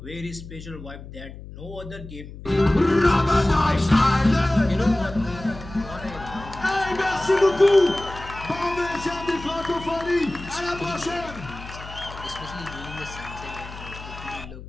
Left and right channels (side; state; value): left; noise; hum, 14 dB below the sound